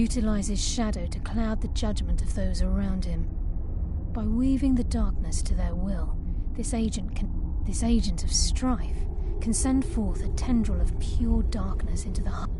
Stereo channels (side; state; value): both; identical; correlation 1.00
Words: shadow to cloud the judgment of those around him. By weaving the darkness to their will, this agent of strife can send forth a tendril of pure darkness into the heart.